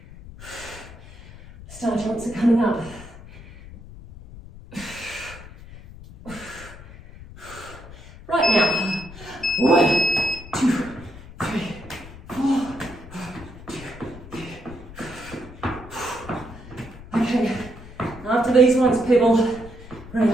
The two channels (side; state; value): left; noise; rumble, 17 dB below the sound